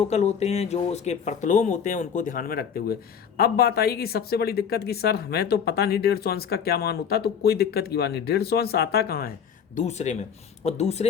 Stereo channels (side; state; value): right; quieter; 7.4 dB